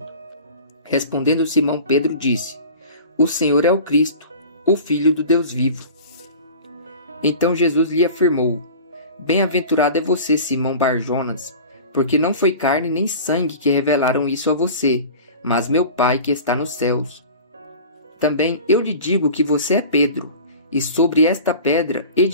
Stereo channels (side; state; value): both; inverted; correlation -0.39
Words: Respondendo Simão Pedro disse: O Senhor é o Cristo, o Filho do Deus vivo. Então Jesus lhe afirmou: Bem-aventurado é você, Simão Bar-Jonas, porque não foi carne nem sangue que revelaram isso a você, mas meu Pai que está nos céus. Também eu lhe digo que você é Pedro, e sobre esta pedra